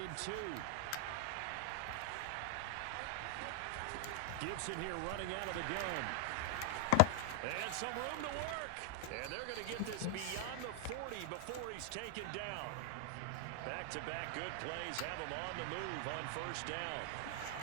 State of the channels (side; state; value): both; different; correlation 0.00